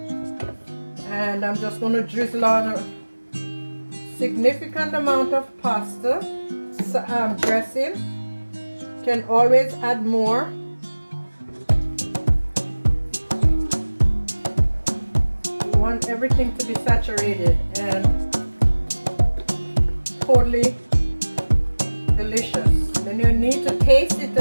And I'm just going to drizzle on a significant amount of pasta dressing. Can always add more. You want everything to be saturated and totally delicious. Then you need to taste it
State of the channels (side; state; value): both; inverted; correlation -1.00